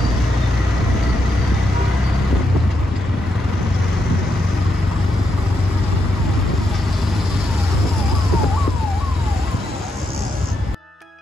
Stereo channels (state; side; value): normal; both; correlation 0.81